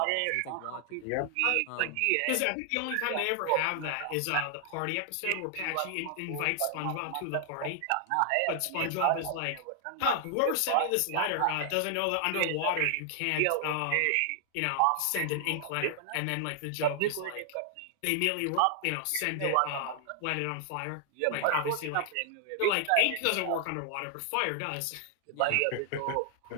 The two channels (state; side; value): different; both; correlation 0.00